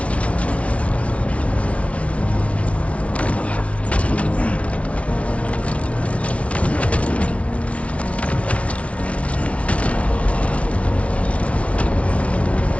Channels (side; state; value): right; late; 0.063 ms